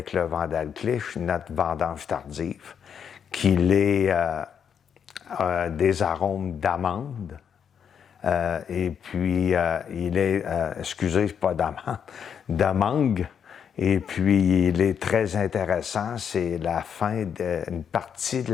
le Vandalclich notre vendange tardive, qui est des arômes d'amande. Et puis, il est, pas d'amande, de mangue. Et puis, il est très intéressant. C'est une partie de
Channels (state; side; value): quieter; right; 7.7 dB